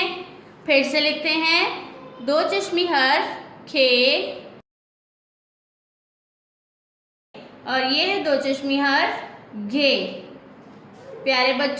फिर से लिखते हैं दो चश्मी हर्फ खे और ये है दो चश्मी हर्फ घे। प्यारे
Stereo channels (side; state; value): both; identical; correlation 1.00